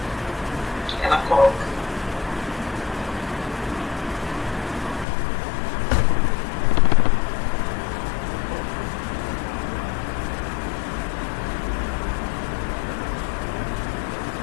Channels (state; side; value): drops out; right; at 5.1 s